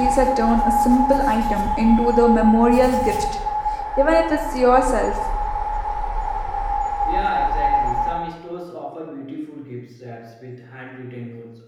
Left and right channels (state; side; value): identical; both; correlation 1.00